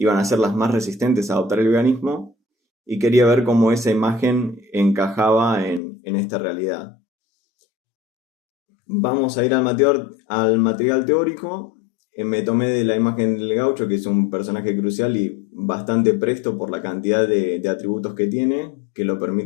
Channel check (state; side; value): drops out; right; at 5.8 s